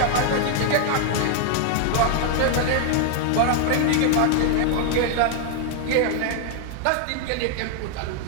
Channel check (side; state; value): both; different; correlation 0.00